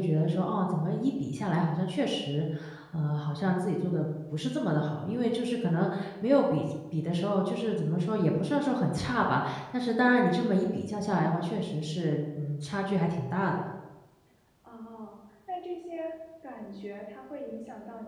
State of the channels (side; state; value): both; identical; correlation 1.00